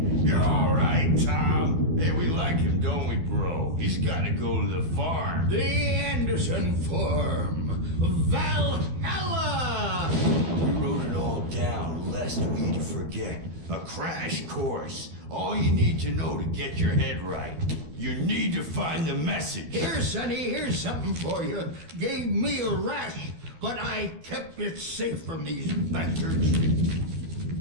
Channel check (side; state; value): left; late; 12 ms